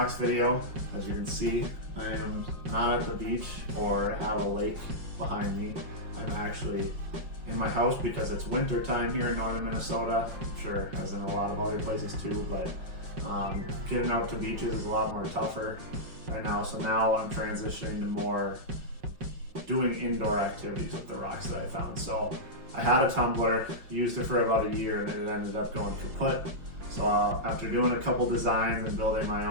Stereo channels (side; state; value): left; late; 5.4 ms